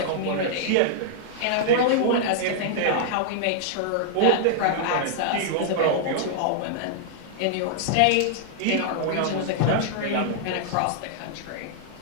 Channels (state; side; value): different; both; correlation -0.01